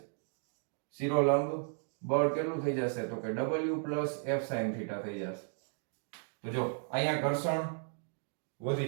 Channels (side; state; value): left; silent; 55 dB below the other